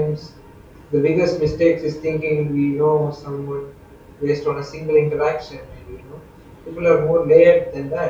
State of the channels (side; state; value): both; identical; correlation 1.00